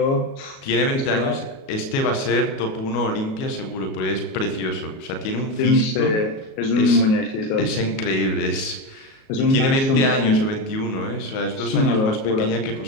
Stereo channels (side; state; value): right; late; 37 ms